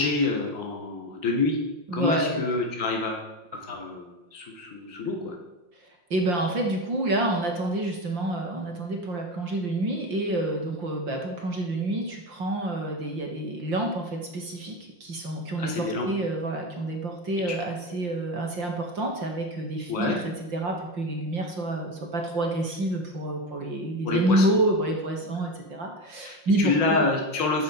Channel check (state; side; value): late; left; 5.6 ms